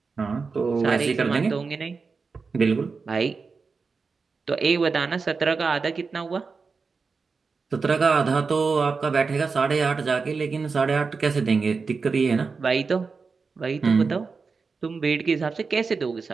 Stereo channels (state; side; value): quieter; left; 4.7 dB